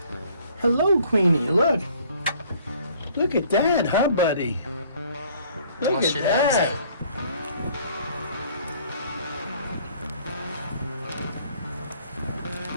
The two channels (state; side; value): inverted; both; correlation -0.58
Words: Hello, Queenie, look. Look at that, huh, buddy? Look at that.